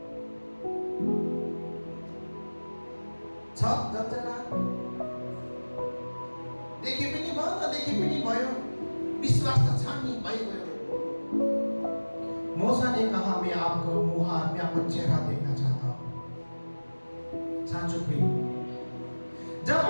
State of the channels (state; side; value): inverted; both; correlation -1.00